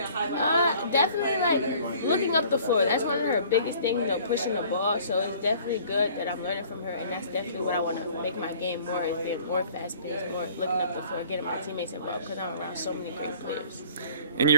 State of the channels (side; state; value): both; inverted; correlation -0.52